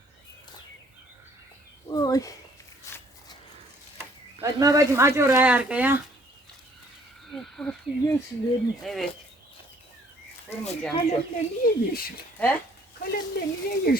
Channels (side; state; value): both; normal; correlation 0.61